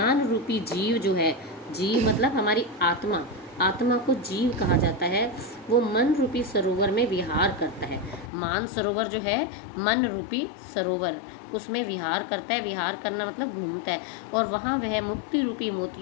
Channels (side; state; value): right; drops out; at 8.3 s